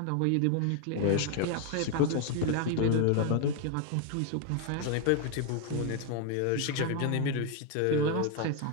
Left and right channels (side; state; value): both; different; correlation 0.01